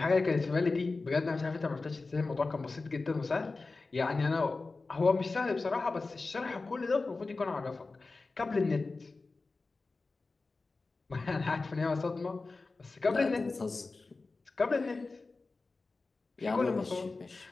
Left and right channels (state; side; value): quieter; right; 3.7 dB